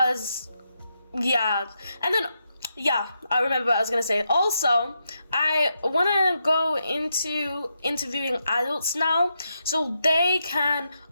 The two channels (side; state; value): both; inverted; correlation -0.83